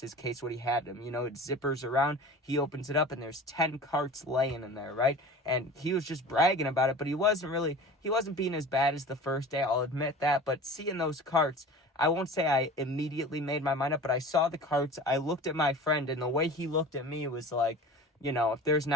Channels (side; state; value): both; normal; correlation 0.38